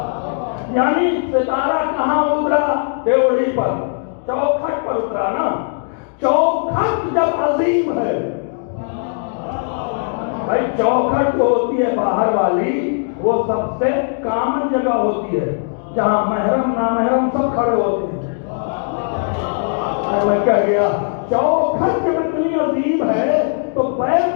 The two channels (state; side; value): silent; right; 66 dB below the other